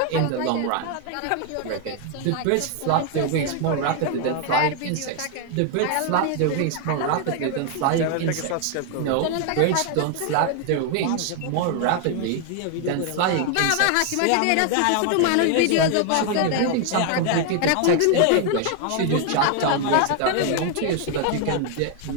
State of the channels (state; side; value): different; both; correlation 0.00